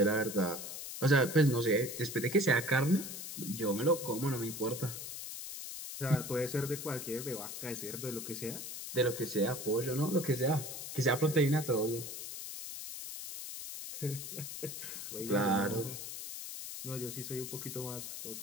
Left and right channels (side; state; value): left; noise; hiss, 8 dB below the sound